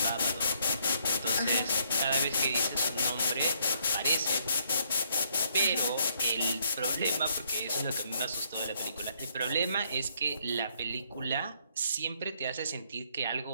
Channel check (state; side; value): inverted; both; correlation -0.69